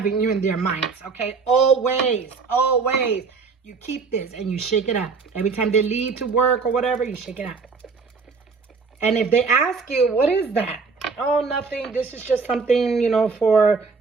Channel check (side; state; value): left; quieter; 4.8 dB